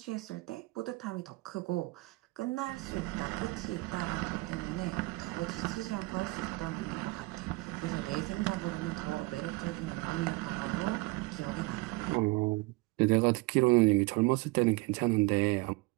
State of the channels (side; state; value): left; quieter; 23.9 dB